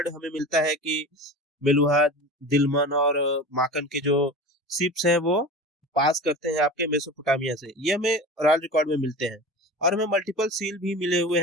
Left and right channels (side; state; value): both; normal; correlation 0.32